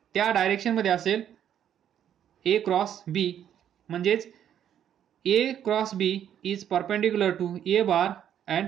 त्या डायरेक्शनमध्ये असेल ए क्रॉस बी, म्हणजेच A cross B is perpendicular to A bar and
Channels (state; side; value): quieter; left; 9.9 dB